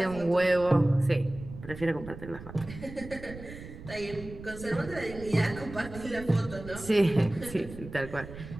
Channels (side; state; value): right; noise; rumble, 13 dB below the sound